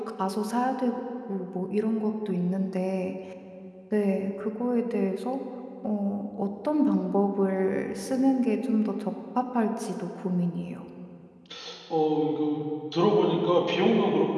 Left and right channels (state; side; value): identical; both; correlation 1.00